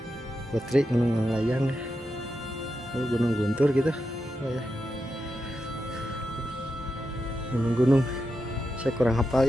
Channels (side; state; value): both; normal; correlation 0.87